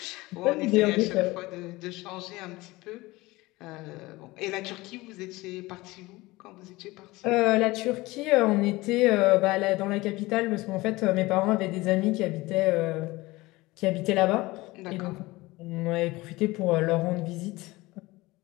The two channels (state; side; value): quieter; right; 20.6 dB